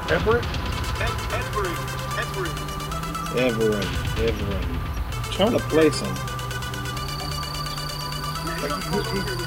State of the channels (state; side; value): identical; both; correlation 1.00